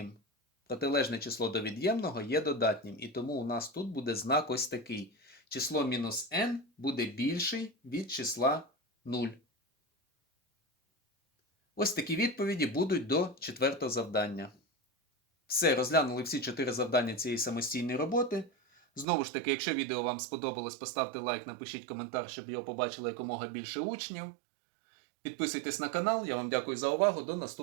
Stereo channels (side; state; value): left; drops out; at 19.1 s